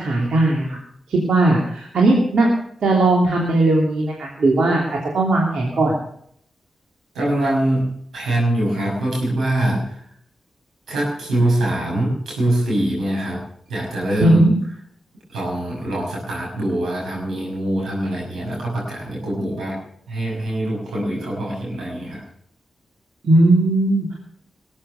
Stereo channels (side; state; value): both; normal; correlation 0.84